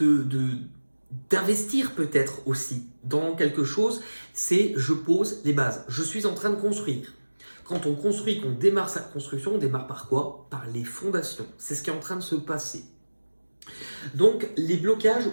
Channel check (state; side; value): inverted; both; correlation -1.00